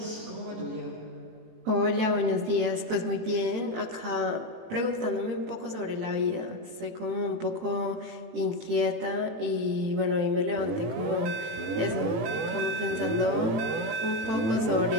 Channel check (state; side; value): late; left; 18 ms